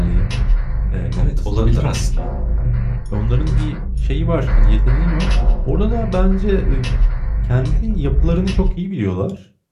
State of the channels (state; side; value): identical; both; correlation 1.00